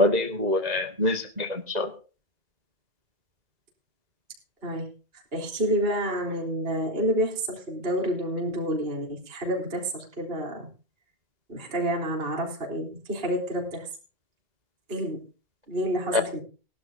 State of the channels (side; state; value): left; late; 2.7 ms